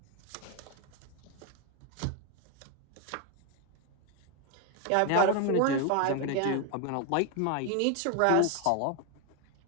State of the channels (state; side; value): different; both; correlation 0.01